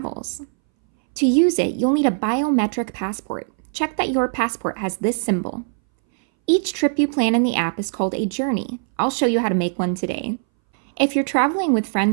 To use it, you'll need a biometric passport. Check that your passport has this symbol. Each trip you plan in the app is called a journey. I'll show you how to make one today. If you're traveling with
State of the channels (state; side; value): silent; left; 62 dB below the other